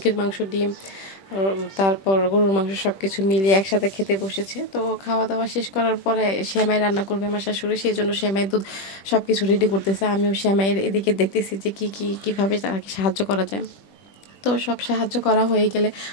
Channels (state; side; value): late; right; 21 ms